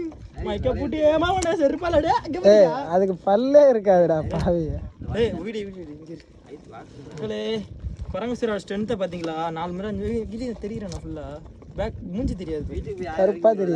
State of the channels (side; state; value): both; identical; correlation 1.00